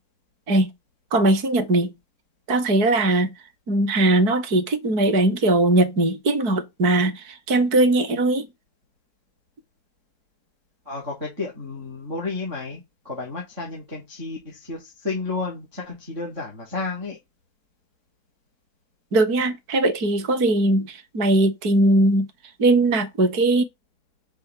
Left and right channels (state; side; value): late; left; 4.5 ms